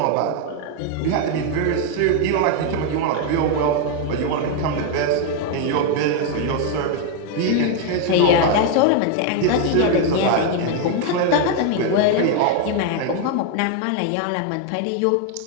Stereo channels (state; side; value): different; both; correlation 0.01